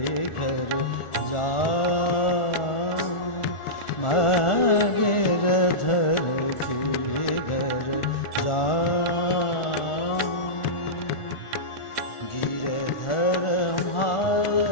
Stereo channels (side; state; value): right; late; 1.4 ms